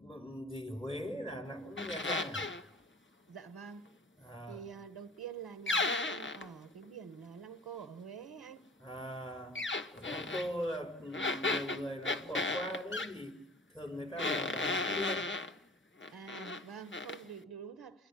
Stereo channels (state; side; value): normal; both; correlation 0.43